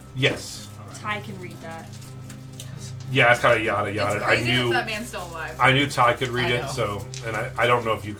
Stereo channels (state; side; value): identical; both; correlation 1.00